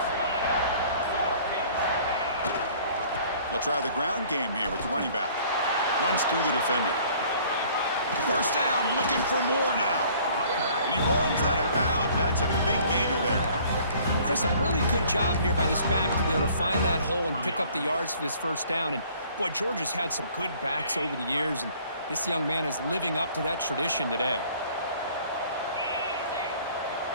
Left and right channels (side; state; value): both; inverted; correlation -0.55